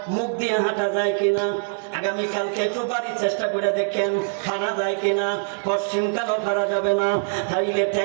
মুখ দিয়ে হাঁটা যায় কিনা। আগামীকালকে একটু বাড়ির চেষ্টা করে দেখেন হারা যায় কিনা। পশ্চিমকালও হারা যাবে না, তাইলে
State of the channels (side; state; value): left; silent; digital silence